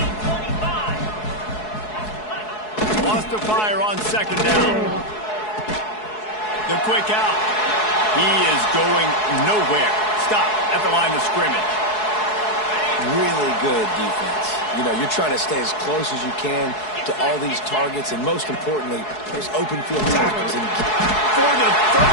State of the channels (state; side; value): late; right; 4.7 ms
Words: Lost to fire on second down. The quick out. He is going nowhere. Stop at the line of scrimmage. Really good defense. You know, you're trying to stay as close as you can to all these targets, and most importantly, there's open field tackles. And for the